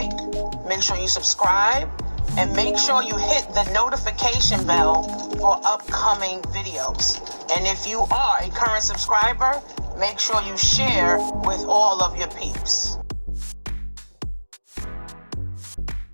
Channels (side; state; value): both; inverted; correlation -1.00